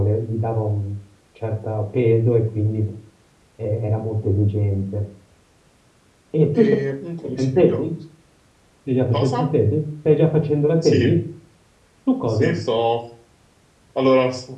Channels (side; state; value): both; identical; correlation 1.00